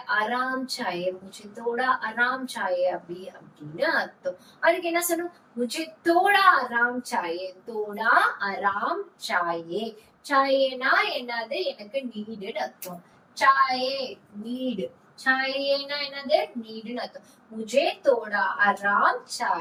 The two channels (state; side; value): identical; both; correlation 1.00